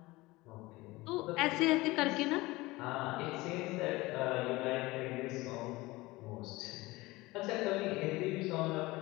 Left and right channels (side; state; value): right; quieter; 20.8 dB